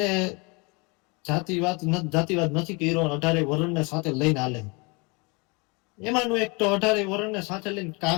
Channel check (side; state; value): right; quieter; 29.2 dB